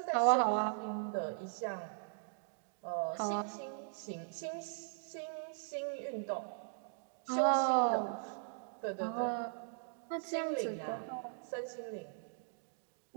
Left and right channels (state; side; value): silent; left; digital silence